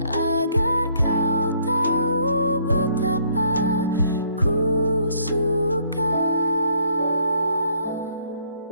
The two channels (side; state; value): both; inverted; correlation -0.65